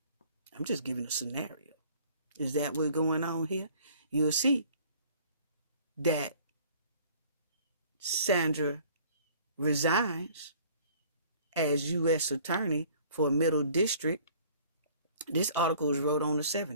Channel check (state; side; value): inverted; both; correlation -0.53